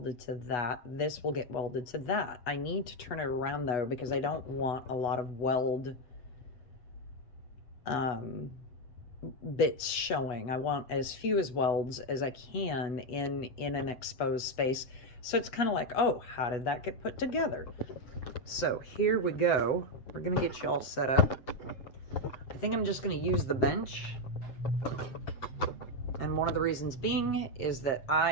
to that. This will get welded to that. I need to turn it around though, because I don't want a lot of weld bits showing. I want as few as welds as I can in an exposed space. So it's kind of like, oh, how did that get put together? So here we go. We're going to get you all set up. I think I'm just going to use the bench. And one of the reasons being is that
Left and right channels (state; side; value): late; right; 7.9 ms